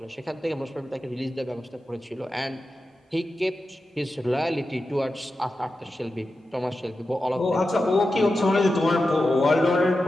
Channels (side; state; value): both; normal; correlation 0.91